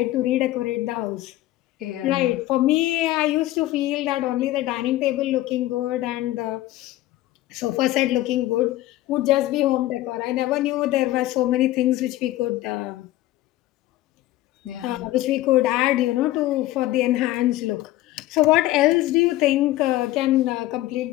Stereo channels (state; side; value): quieter; right; 16.1 dB